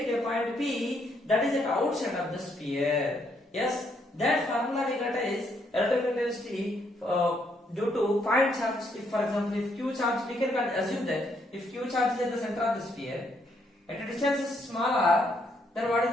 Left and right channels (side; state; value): both; normal; correlation 0.73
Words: at a point P that is at outside of the sphere. Yes, that formula we got is relative intensity due to point charge. If for example, if Q charge, we can assume that if Q charge is at the center of the sphere, at a distance is smaller, then what is